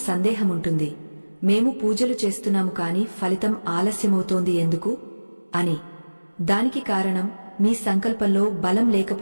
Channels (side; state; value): both; inverted; correlation -1.00